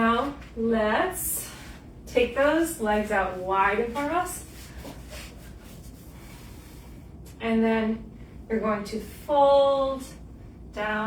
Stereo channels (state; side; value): identical; both; correlation 1.00